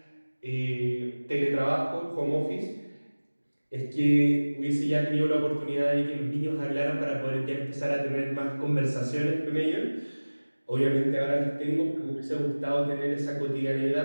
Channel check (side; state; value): both; inverted; correlation -1.00